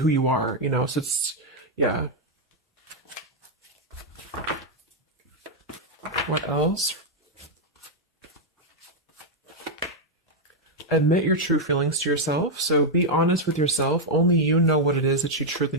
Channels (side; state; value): both; normal; correlation -0.01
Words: you are, so it's, yeah. What else? Admit your true feelings to yourself. So be honest with yourself. Only you know what it is that you truly